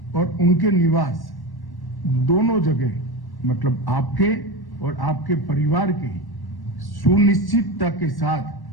और उनके निवास दोनों जगह, मतलब आपके और आपके परिवार के सुनिश्चितता के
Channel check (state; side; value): late; right; 1.1 ms